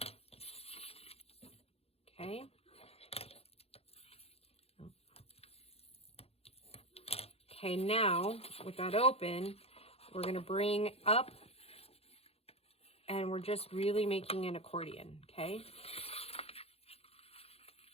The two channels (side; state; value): right; late; 0.29 ms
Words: Okay. Okay, now, with that open, we're going to bring up, and we're just really making an accordion, okay?